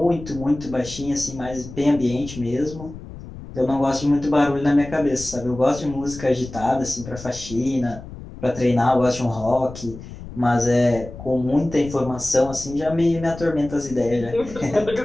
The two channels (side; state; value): left; noise; rumble, 14 dB below the sound